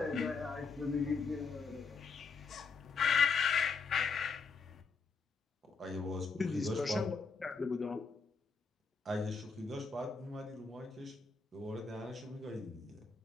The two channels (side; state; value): right; quieter; 4.7 dB